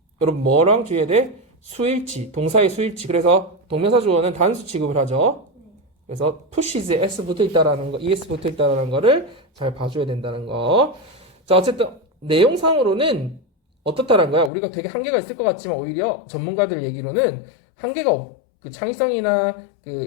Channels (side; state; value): right; drops out; at 14.5 s